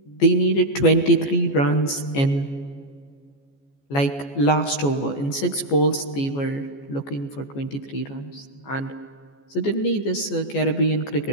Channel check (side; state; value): right; late; 14 ms